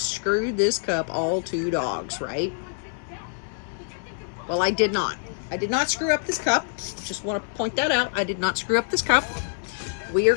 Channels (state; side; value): silent; right; 61 dB below the other